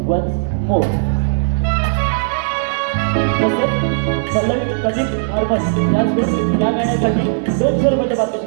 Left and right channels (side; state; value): left; silent; digital silence